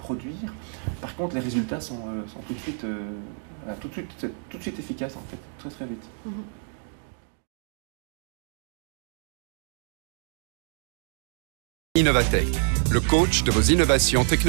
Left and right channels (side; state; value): left; silent; 55 dB below the other